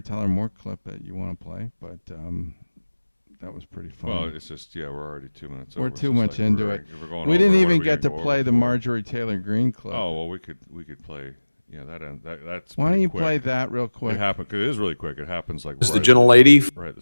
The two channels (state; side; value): inverted; both; correlation -1.00